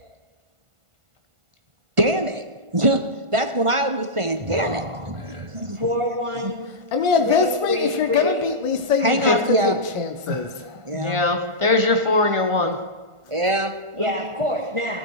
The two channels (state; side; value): late; left; 1.5 ms